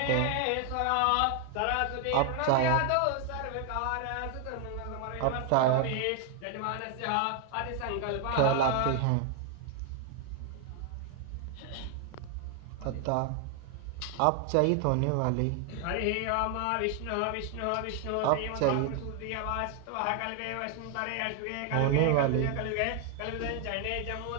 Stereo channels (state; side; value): different; both; correlation 0.00